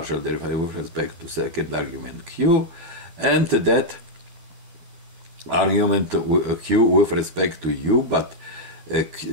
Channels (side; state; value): left; late; 12 ms